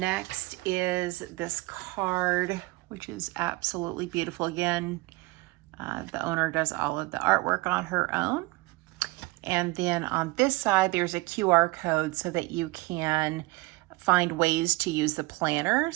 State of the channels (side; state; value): left; quieter; 22.5 dB